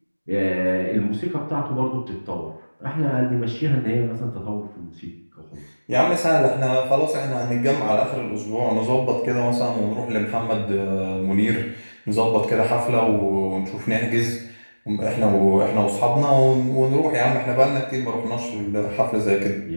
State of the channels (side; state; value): both; inverted; correlation -1.00